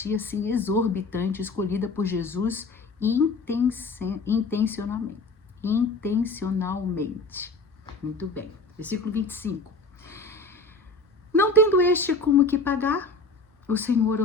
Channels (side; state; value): right; quieter; 3.4 dB